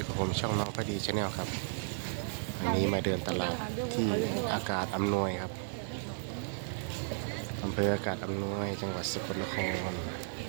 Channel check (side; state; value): left; silent; digital silence